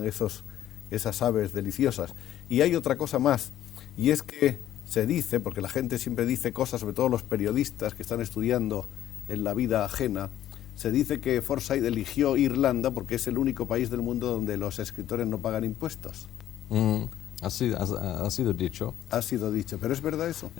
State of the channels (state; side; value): quieter; right; 12.2 dB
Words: esas aves deliciosas. Y hay otra cosa más, y es que se dice, porque la gente siempre dice cosas, sobre todo los periodistas que están estudiando en la vida ajena, se dice que Forsyth eligió Irlanda porque es el único país del mundo donde los escritores no pagan impuestos. Ha sido dicho. Ha sido dicho, ¿pero es verdad eso?